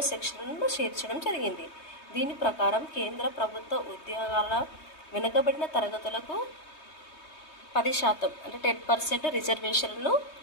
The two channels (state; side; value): late; right; 3.2 ms